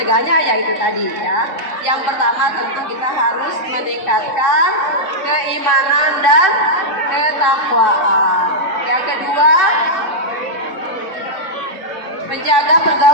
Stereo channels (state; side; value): late; right; 3.7 ms